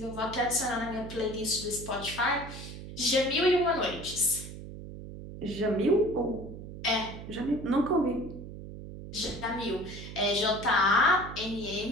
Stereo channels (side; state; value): right; noise; hum, 11 dB below the sound